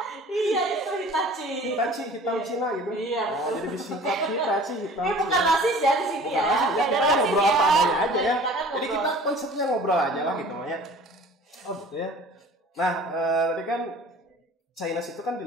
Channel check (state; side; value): normal; both; correlation 0.46